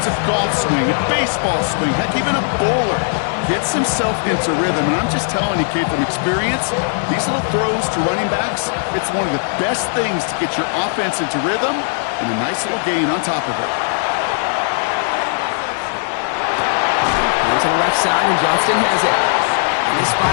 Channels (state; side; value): silent; right; 57 dB below the other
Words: a golf swing, a baseball swing, heck, even a bowler gets himself into rhythm. And I'm just telling you, kid, from experience, these little throws to running backs, it's one of the best things to get your offense into rhythm and a nice little gain on top of it. To the left side, and Johnston has it. And this